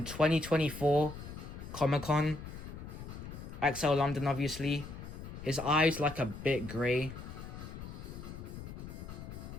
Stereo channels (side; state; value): left; noise; rumble, 10 dB below the sound